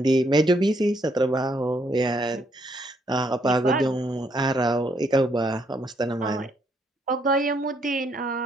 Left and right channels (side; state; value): both; normal; correlation 0.72